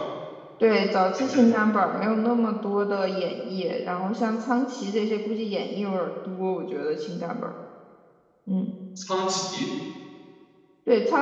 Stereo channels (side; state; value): both; identical; correlation 1.00